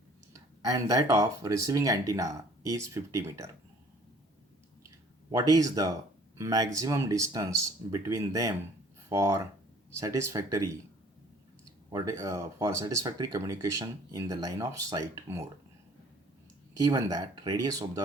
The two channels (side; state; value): both; normal; correlation 0.54